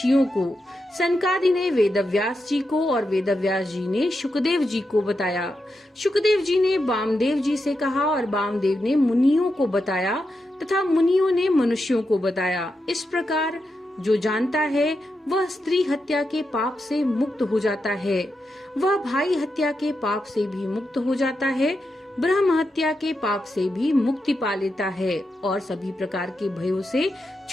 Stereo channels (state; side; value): normal; both; correlation 0.86